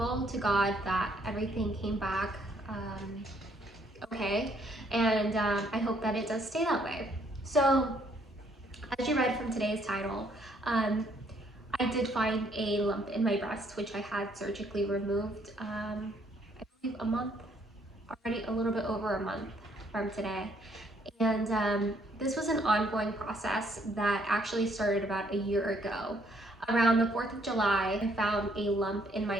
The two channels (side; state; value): both; normal; correlation 0.67